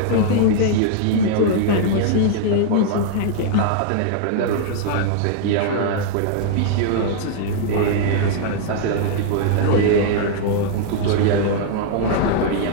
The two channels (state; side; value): different; both; correlation -0.01